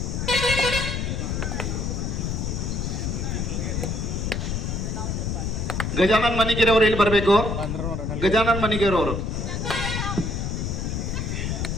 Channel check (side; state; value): left; noise; rumble, 1 dB below the sound